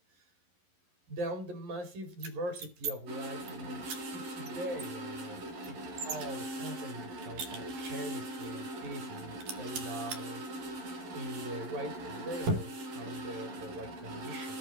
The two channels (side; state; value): left; late; 11 ms